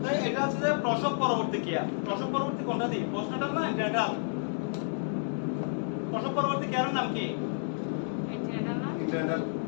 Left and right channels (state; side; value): silent; right; digital silence